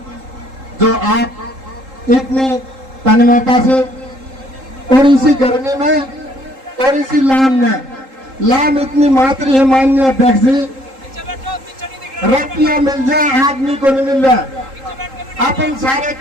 जो आप इतनी तन्मयता से और इसी गर्मी में और इसी लाम में, लाम इतनी मातृ है माननीय अध्यक्ष जी, रुपया मिल जाए आदमी को नहीं मिल रहा। अपन सारे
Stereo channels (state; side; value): late; left; 3.8 ms